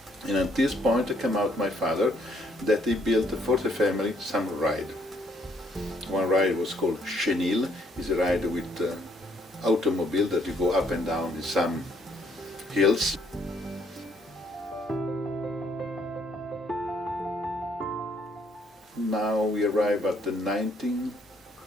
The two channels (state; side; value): normal; both; correlation 0.68